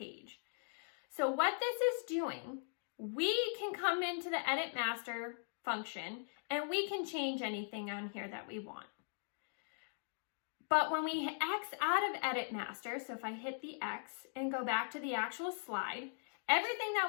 So what this is doing, we can come into the Edit Master function and we can change anything on here that we want. But when we X out of Edit Master, so if I hit the X and go back to the actual slide, everything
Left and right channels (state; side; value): silent; right; digital silence